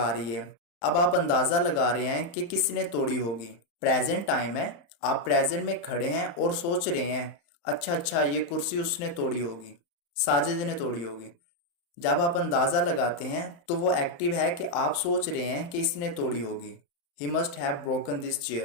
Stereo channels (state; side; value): late; right; 35 ms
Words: रही है। अब आप अंदाजा लगा रहे हैं कि किसने तोड़ी होगी। प्रेजेंट टाइम है, आप प्रेजेंट में खड़े हैं और सोच रहे हैं अच्छा ये कुर्सी उसने तोड़ी होगी, साजिद ने तोड़ी होगी। जब आप अंदाजा लगाते हैं तो वो एक्टिव है कि आप सोच रहे हैं कि इसने तोड़ी होगी। ही must have broken this